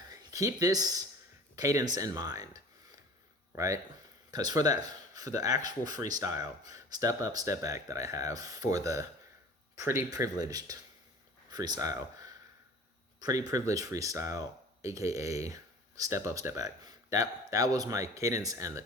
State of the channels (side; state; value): both; normal; correlation 0.43